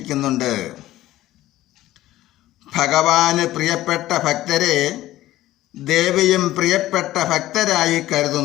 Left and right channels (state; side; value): quieter; right; 15.2 dB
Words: ഭഗവാന് പ്രിയപ്പെട്ട ഭക്തരെ ദേവിയും പ്രിയപ്പെട്ട ഭക്തരായി